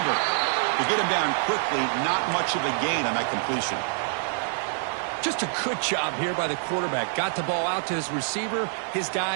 To get him down quickly, not much of a gain on that completion. Just a good job here by the quarterback. Got the ball out to his receiver. His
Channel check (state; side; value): silent; left; digital silence